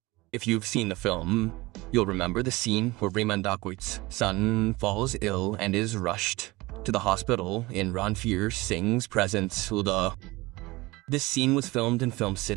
If you've seen the film, you'll remember the scene where Rehman Dakwit's son falls ill and is rushed to the hospital in Ranveer Singh's presence. This scene was filmed in Film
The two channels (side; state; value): left; quieter; 21.4 dB